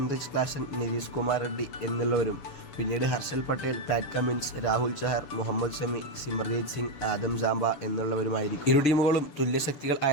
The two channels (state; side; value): late; right; 7.1 ms